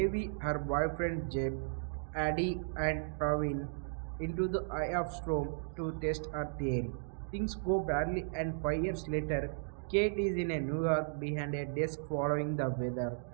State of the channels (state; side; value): silent; left; digital silence